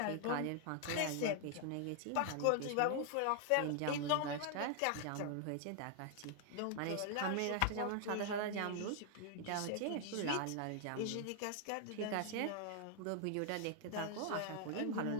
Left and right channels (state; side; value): different; both; correlation 0.00